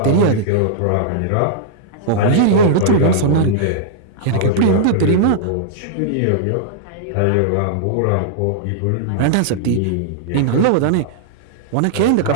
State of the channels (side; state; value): both; different; correlation -0.01